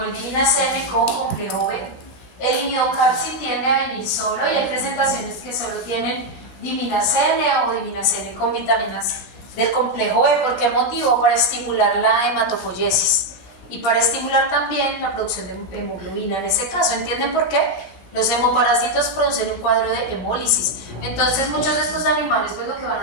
diminacene con complejo B. El imidocalci tiende a venir solo y hay presentaciones que solo tienen diminacene o diminacene con vitaminas del complejo B. ¿Por qué motivo? Para estimular la hematopoiesis y para estimular también la producción de hemoglobina en ese caso. ¿Entienden por qué? Los hemoparásitos producen un cuadro de hemólisis. Entonces muchos de estos animales pues lo que van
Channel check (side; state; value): right; late; 16 ms